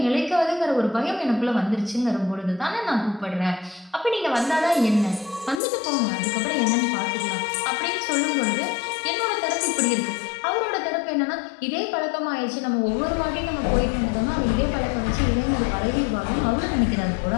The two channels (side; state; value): right; drops out; at 5.6 s